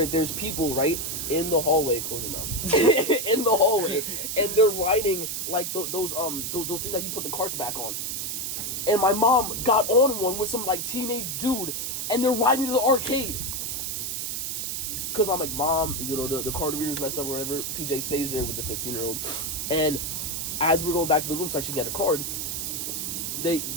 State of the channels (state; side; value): noise; right; hiss, 3 dB below the sound